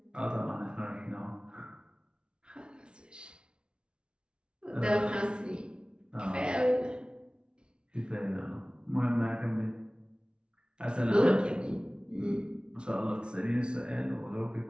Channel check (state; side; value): late; left; 0.056 ms